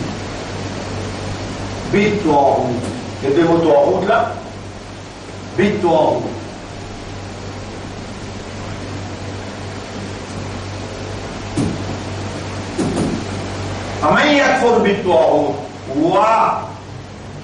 بالطاغوت. Les deux mots طاغوت là, بالطاغوت. فمن يكفر بالطاغوت ويؤمن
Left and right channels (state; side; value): identical; both; correlation 1.00